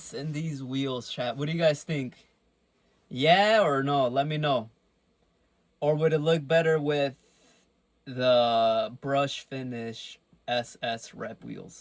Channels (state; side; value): identical; both; correlation 1.00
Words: and these wheels, chat. What do you guys think? Yeah or no? Let me know. Or would it look better with the brush finish SS rep